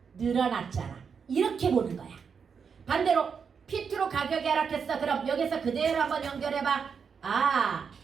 늘어났잖아. 이렇게 보는 거야. 반대로 P2로 가격이 하락했어. 그럼 여기서 그대로 한번 연결해봐.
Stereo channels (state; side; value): quieter; left; 6.3 dB